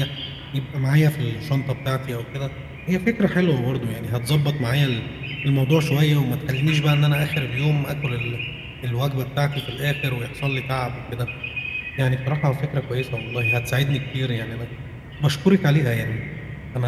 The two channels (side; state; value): both; identical; correlation 1.00